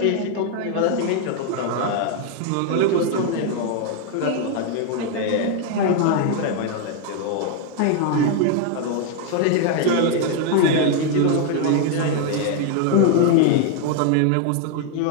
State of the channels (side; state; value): both; different; correlation 0.00